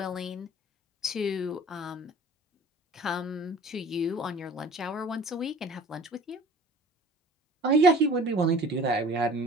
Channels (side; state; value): both; normal; correlation 0.45